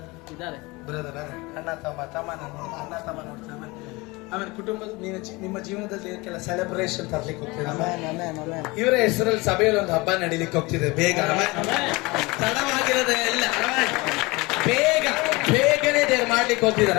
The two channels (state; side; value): quieter; right; 23.9 dB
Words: ಇದ್ದಾರೆ? ಬ್ರದರ್ ಅಣ್ಣ ತಮ್ಮ ಅಣ್ಣ ತಮ್ಮ ನೋಡ್ತಾರೆ. ಆಮೇಲೆ ಕುಟುಂಬದ ನಿಮ್ಮ ಜೀವನದಲ್ಲಿ ಕೆಲ ಸೆಲೆಬ್ರೇಷನ್ ತರ್ಲಿಕ್ಕೆ ಹೋಗ್ತಿದೆ. ಇವರ ಹೆಸರಲ್ಲಿ ಸಭೆಯಲ್ಲಿ ಒಂದು ಹಬ್ಬ ನಡೀಲಿಕ್ಕೆ ಹೋಗ್ತಿದೆ. ಬೇಗ ತಡವಾಗಿರೋದೇ ಇಲ್ಲ, ಬೇಗನೆ ದೇವ್ರು ಮಾಡ್ಲಿಕ್ಕೆ ಹೋಗ್ತಿದಾರ.